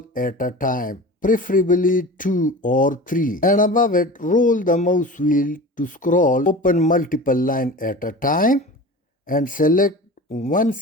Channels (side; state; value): both; normal; correlation 0.34